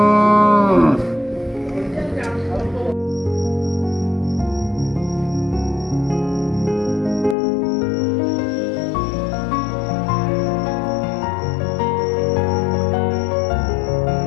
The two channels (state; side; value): drops out; right; at 7.4 s